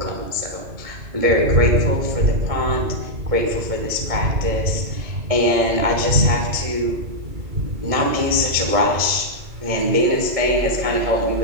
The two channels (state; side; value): late; left; 1.7 ms